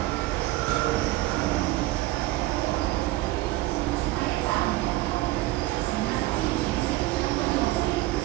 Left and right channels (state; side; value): quieter; left; 17.9 dB